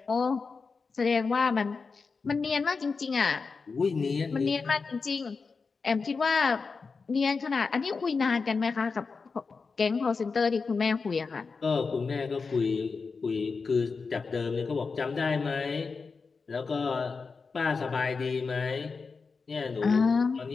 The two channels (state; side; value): quieter; right; 4.7 dB